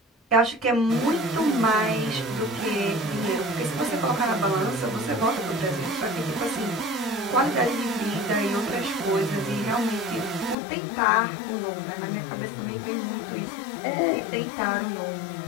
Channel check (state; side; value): drops out; right; at 10.6 s